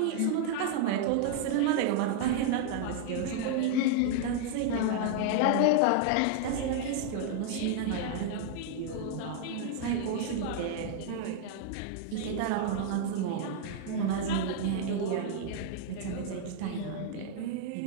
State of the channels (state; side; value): different; both; correlation 0.00